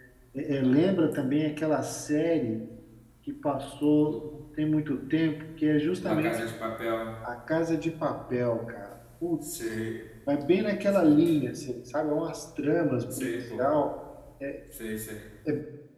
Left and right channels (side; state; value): both; identical; correlation 1.00